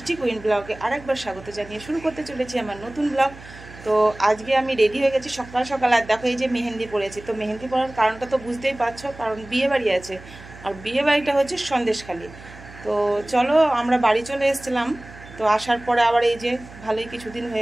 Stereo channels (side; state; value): right; noise; hum, 18 dB below the sound